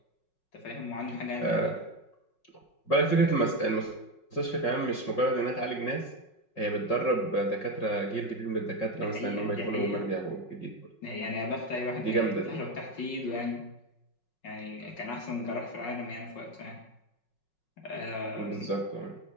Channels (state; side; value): late; right; 5.4 ms